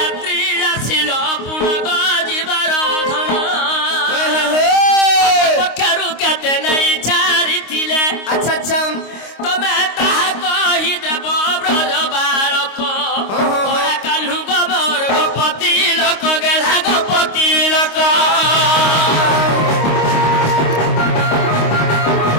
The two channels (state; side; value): late; right; 26 ms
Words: आसिल पुनग जीवर धन पक्षरु केते नहीं चारि थिले अच्छा अच्छा तमे ताहा कहि देव ब्रज बालक ओरा कान्हू गोबर गोपति लोक गेला गोपति लोक